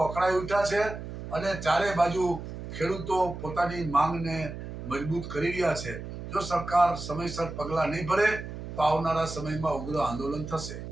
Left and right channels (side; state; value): right; noise; hum, 9 dB below the sound